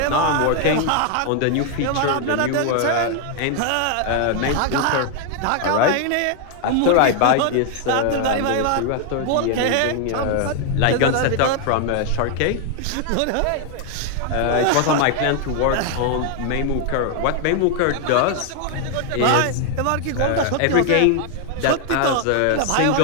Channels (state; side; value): different; both; correlation 0.00